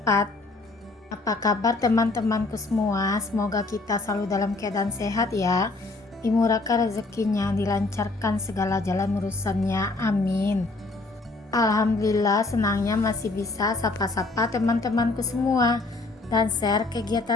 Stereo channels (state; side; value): quieter; right; 3.2 dB